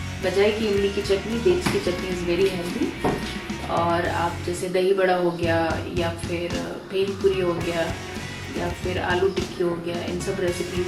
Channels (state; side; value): identical; both; correlation 1.00